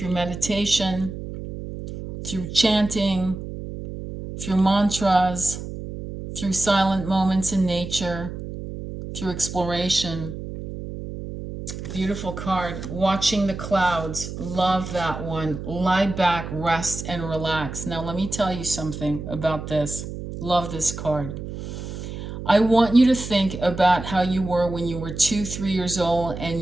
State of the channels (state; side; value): noise; right; hum, 8 dB below the sound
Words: meditation, through chanting, through mantras, through silent moments in nature, through exploration. Beautiful card. Watching the clouds. Love that one. Lie back, rest, and relax. Now, let me tell you something about this. Love this card. I want you to think about how you were when you were 2-3 years old and